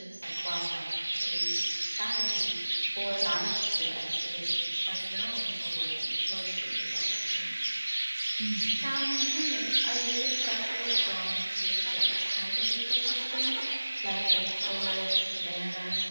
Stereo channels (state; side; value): inverted; both; correlation -1.00